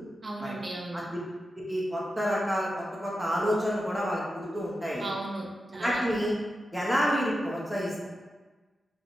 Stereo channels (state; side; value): normal; both; correlation 0.90